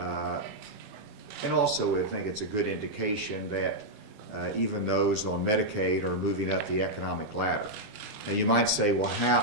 And also, I think it's a good indication that even those on Medicaid are moving up the economic ladder. Now you might say, well, how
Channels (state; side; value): late; left; 21 ms